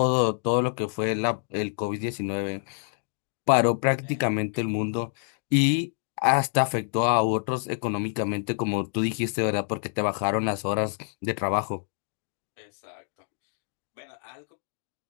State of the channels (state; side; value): silent; right; 60 dB below the other